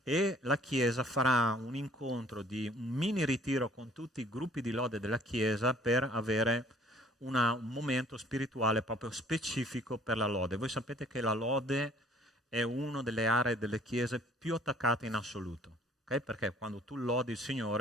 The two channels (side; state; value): both; normal; correlation 0.56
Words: E la Chiesa farà un incontro di un mini ritiro con tutti i gruppi di lode della Chiesa per avere un momento spirituale proprio specifico per la lode. Voi sapete che la lode è una delle aree delle chiese più attaccate in assoluto, okay? Perché quando tu lodi il